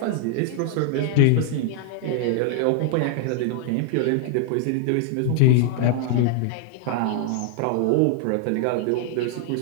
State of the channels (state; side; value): different; both; correlation 0.00